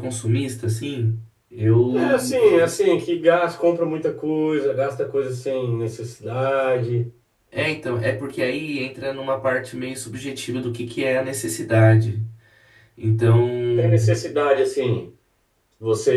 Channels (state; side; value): identical; both; correlation 1.00